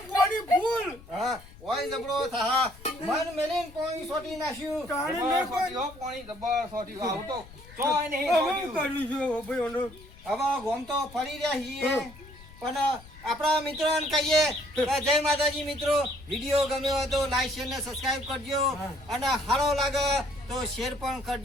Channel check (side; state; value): left; noise; rumble, 20 dB below the sound